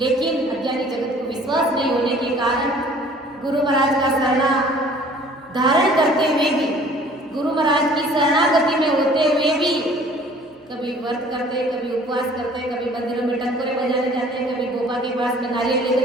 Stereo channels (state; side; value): normal; both; correlation 0.52